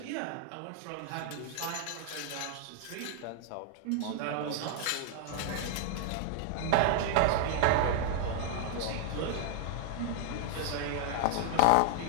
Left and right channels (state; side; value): different; both; correlation 0.00